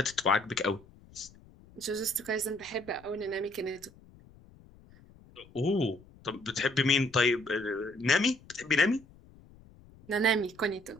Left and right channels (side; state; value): left; noise; rumble, 24 dB below the sound